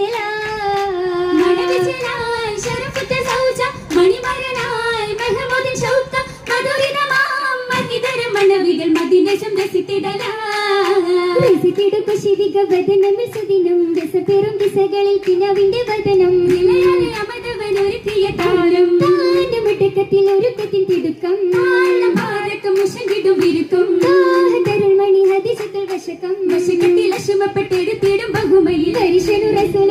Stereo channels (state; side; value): identical; both; correlation 1.00